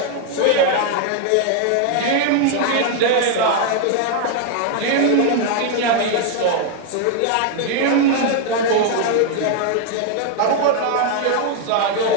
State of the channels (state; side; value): different; both; correlation 0.00